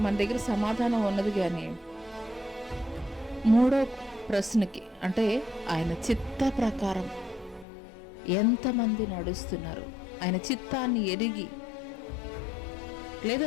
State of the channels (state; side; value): drops out; right; at 7.7 s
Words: మన దగ్గర సమాధానం ఉన్నది. కానీ మూడో ప్రశ్నకి, అంటే ఆయన చిత్త ప్రకారం ఎంతమంది నడుస్తున్నారు, ఆయన చిత్తాన్ని ఎరిగి,